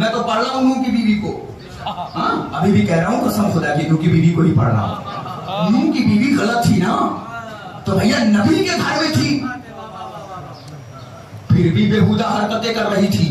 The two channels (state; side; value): identical; both; correlation 1.00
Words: तो पढ़ रहा हूं नूह की बीवी को। अभी भी कह रहा हूं कसम खुदा की, नूह की बीवी को ही पढ़ रहा हूं। नूह की बीवी गलत थी ना, तो भैया नबी के घर में थी, फिर भी बेहुदा हरकतें कर रही थी।